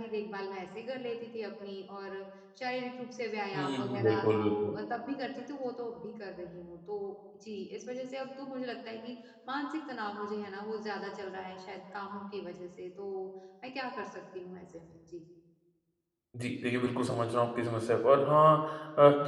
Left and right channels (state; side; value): identical; both; correlation 1.00